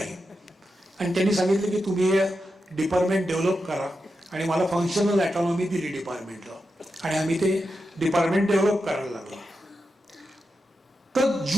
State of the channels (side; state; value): both; normal; correlation 0.88